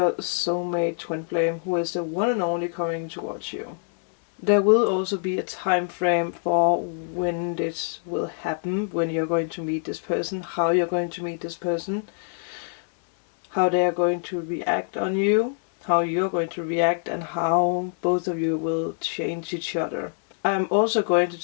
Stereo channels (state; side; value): silent; right; digital silence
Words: soulmate twin flame? Who is the one and only coming towards you? There will also be a time frame for when this will happen, when you're going to meet this person, how you're going to meet this person, how they are going to react on you, how you're going to react, and how both of you will change each other. I'm also going